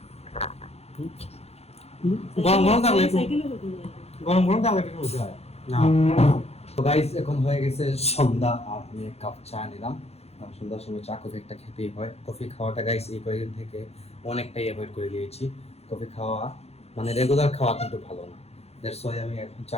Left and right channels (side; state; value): right; late; 0.30 ms